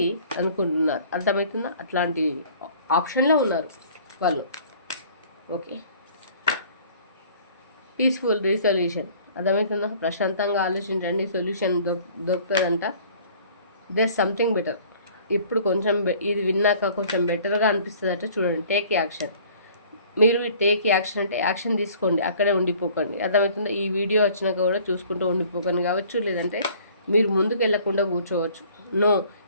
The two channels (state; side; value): inverted; both; correlation -0.53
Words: అనుకుంటున్నారు. అర్థమవుతుందా? అట్లాంటి ఆప్షన్లో ఉన్నారు వాళ్ళు. ఓకే, పీస్ఫుల్ రిజల్యూషన్, అర్థమవుతుందా? ప్రశాంతంగా ఆలోచించండి, సొల్యూషన్ దొరుకుతుందంట. There something better. ఇప్పుడు కొంచెం ఇది విన్నాక కొంచెం బెటర్గా అనిపిస్తుందట. చూడండి, టేక్ యాక్షన్. మీరు టేక్ యాక్షన్ అంటే యాక్షన్ తీసుకోండి, అక్కడే ఉండిపోకండి. అర్థమవుతుందా? ఈ వీడియో వచ్చినాక కూడా చూసుకుంటూ ఉండిపోకండి కావచ్చు, లేదంటే మీరు ముందుకు వెళ్ళకుండా కూర్చోవచ్చు. నో,